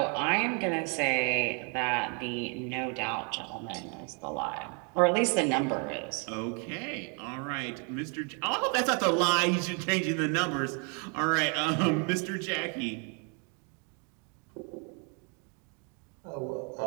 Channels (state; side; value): quieter; left; 36.9 dB